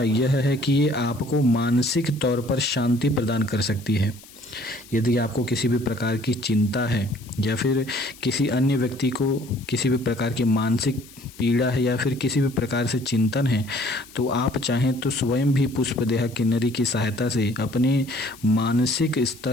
यह है कि ये आपको मानसिक तौर पर शांति प्रदान कर सकती है। यदि आपको किसी भी प्रकार की चिंता है या फिर किसी अन्य व्यक्ति को किसी भी प्रकार की मानसिक पीड़ा है या फिर किसी भी प्रकार से चिंतन है, तो आप चाहें तो स्वयं भी पुष्पदेहा किन्नरी की सहायता से अपने मानसिक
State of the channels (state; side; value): noise; left; hiss, 21 dB below the sound